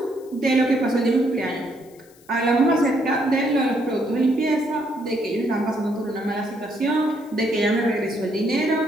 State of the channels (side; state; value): left; noise; hiss, 28 dB below the sound